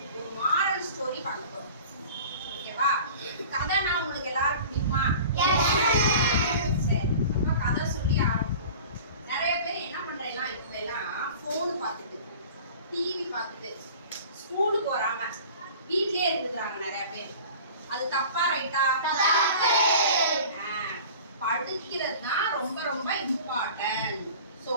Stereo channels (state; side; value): inverted; both; correlation -0.42